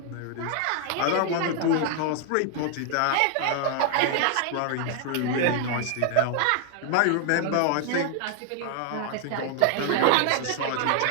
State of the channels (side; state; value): both; different; correlation 0.00